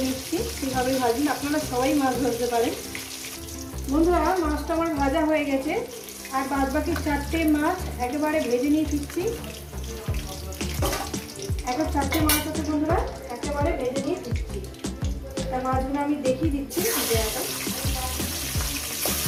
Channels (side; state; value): both; identical; correlation 1.00